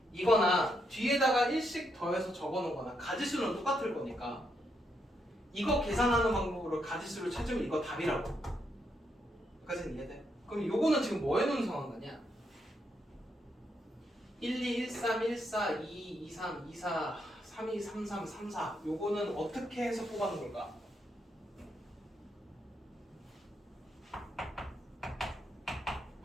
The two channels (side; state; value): both; normal; correlation 0.78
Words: 이거나 뒤에다가 1씩 더해서 적어놓은 거나 가지수는 똑같을 거니까 이거 계산하는 방법으로 가지수를 찾으면 이거 답이라고. 여기까지는 이해돼? 그럼 요거는 지금 뭐 해놓은 상황 거냐? 1, 2, 1, 3, 1, 4, 2, 2, 3, 2, 4, 3, 2, 3, 3, 3, 4 요거는 어떻게 해서 뽑아놓은 걸까?